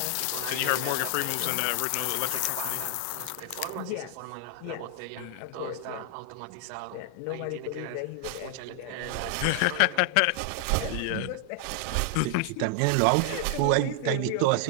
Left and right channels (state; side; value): different; both; correlation 0.00